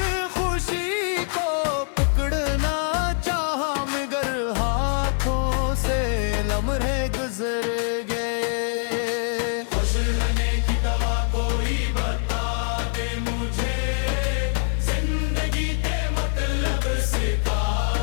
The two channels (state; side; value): silent; right; 56 dB below the other